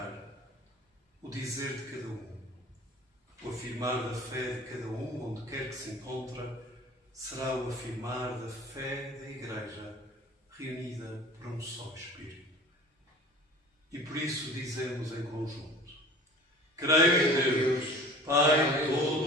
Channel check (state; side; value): normal; both; correlation 0.43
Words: o dizer de cada um, o afirmar da fé de cada um, onde quer que se encontra, será o afirmar da fé da Igreja reunida por um só Espírito. E por isso dizemos em conjunto: creio em Deus, Pai